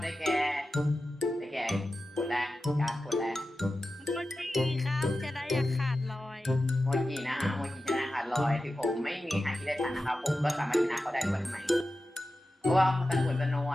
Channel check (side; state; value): both; normal; correlation 0.93